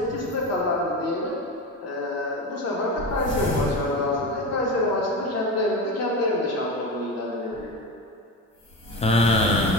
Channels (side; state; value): both; normal; correlation 0.23